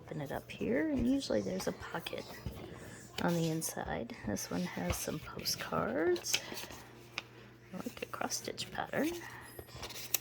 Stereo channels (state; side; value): identical; both; correlation 1.00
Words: it up here, and usually there's a pocket on the inside. This one has some postcards, like a cross-stitch pattern,